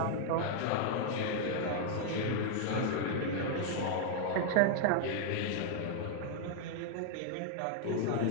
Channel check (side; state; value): both; different; correlation 0.00